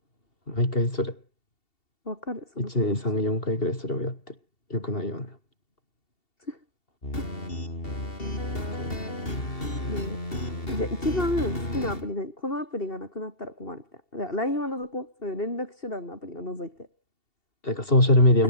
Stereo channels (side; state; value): right; late; 2.7 ms